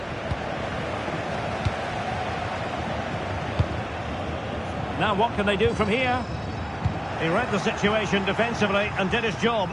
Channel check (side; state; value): both; identical; correlation 1.00